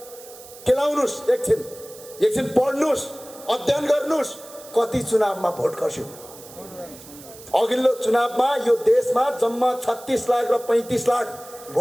केलाउनुहोस्, एकछिन पढ्नुहोस्, अध्ययन गर्नुहोस्, कति चुनावमा भोट खस्यो। अघिल्लो चुनावमा यो देशमा जम्मा 36 लाख र 35 लाख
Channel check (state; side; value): noise; right; hiss, 18 dB below the sound